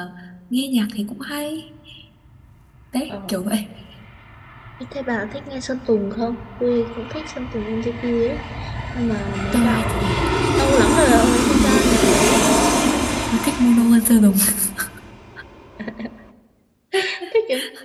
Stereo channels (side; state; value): both; identical; correlation 1.00